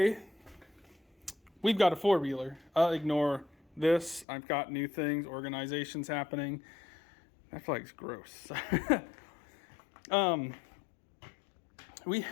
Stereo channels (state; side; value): drops out; right; at 4.2 s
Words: we've got a four-wheeler. I'll ignore this. I've got new things, organizations happening. That flag's gross. We